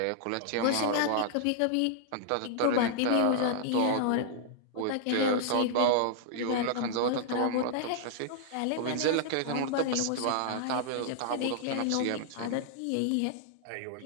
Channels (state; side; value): different; both; correlation -0.01